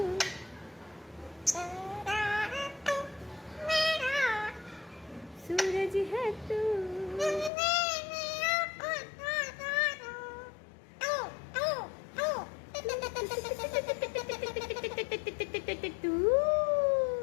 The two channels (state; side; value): drops out; right; at 7.5 s